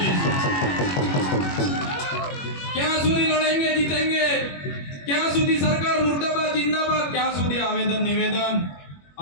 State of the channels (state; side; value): late; right; 21 ms